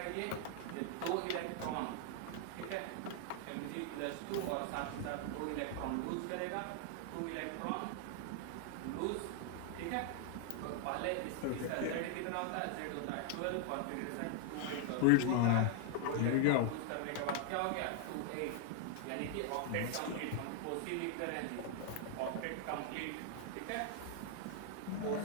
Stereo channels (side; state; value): both; different; correlation 0.00